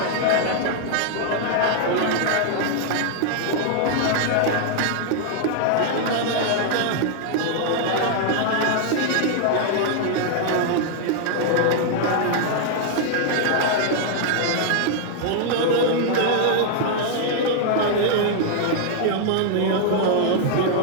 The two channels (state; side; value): different; both; correlation 0.00